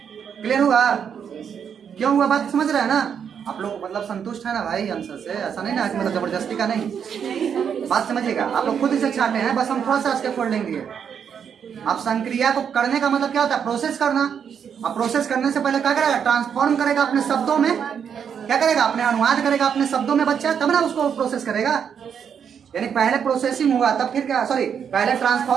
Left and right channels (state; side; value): quieter; left; 7.6 dB